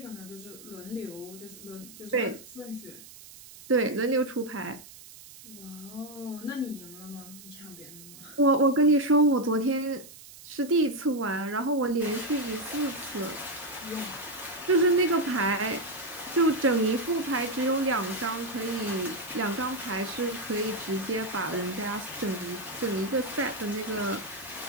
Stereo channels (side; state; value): right; noise; hiss, 18 dB below the sound